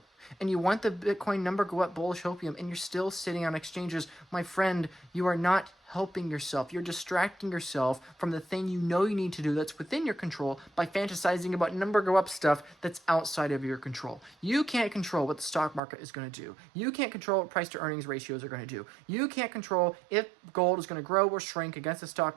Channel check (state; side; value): drops out; left; at 15.8 s